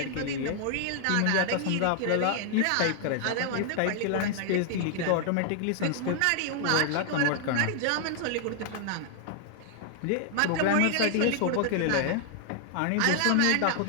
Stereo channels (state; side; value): different; both; correlation 0.00